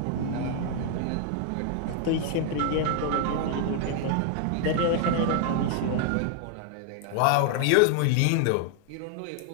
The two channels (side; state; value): both; different; correlation 0.00